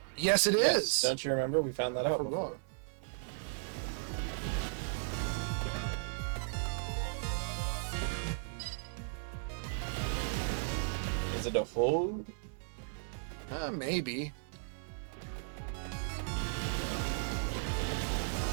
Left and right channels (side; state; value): left; silent; digital silence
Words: Yes, it is. Don't you remember? We found that out before. Is it a hold? Maybe.